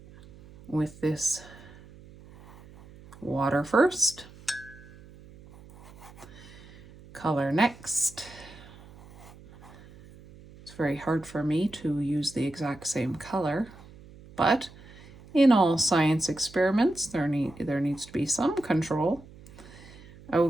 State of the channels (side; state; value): right; noise; hum, 21 dB below the sound